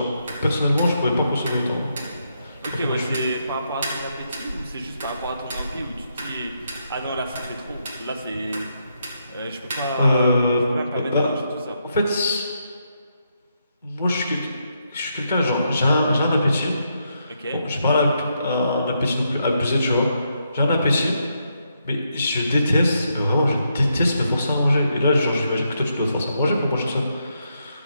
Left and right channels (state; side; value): inverted; both; correlation -0.79